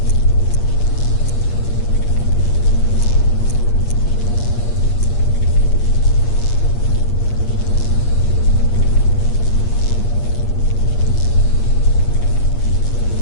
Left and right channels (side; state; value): right; late; 8.5 ms